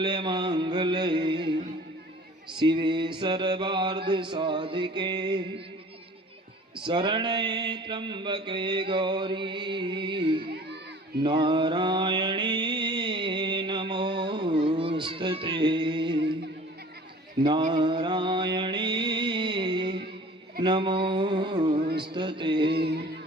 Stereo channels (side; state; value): both; normal; correlation 0.46